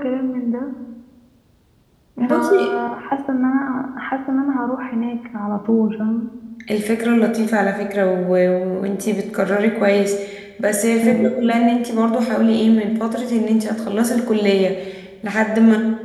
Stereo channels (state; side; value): identical; both; correlation 1.00